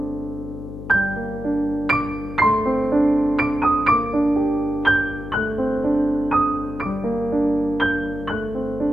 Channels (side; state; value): left; noise; hum, 11 dB below the sound